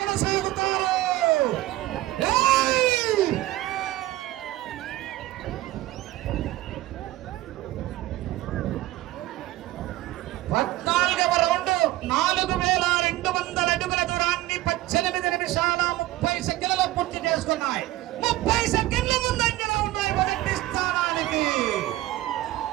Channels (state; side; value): quieter; left; 16.5 dB